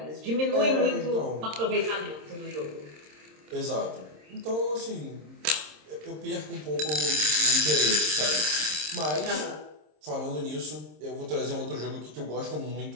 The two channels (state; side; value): late; left; 26 ms